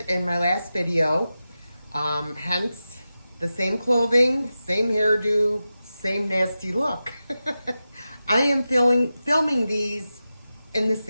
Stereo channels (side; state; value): both; inverted; correlation -0.93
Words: in my last video, hence the same clothing, same hairdo, same nasty look. I am filming these in the